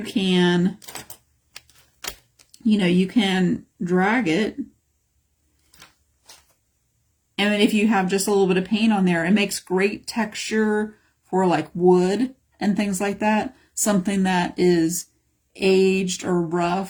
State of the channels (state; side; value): identical; both; correlation 1.00